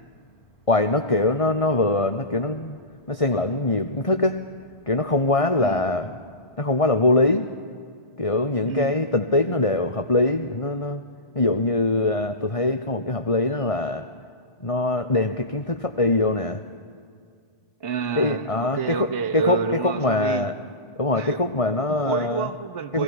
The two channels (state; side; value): late; right; 1.6 ms